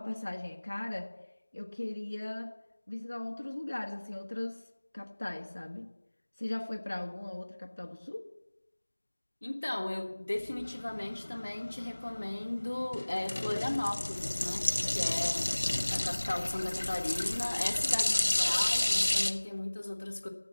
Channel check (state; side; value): inverted; both; correlation -1.00